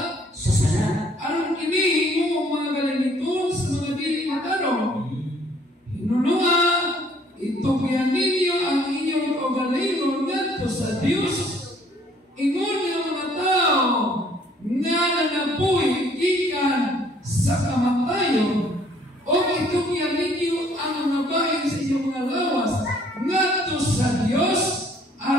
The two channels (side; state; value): both; normal; correlation 0.61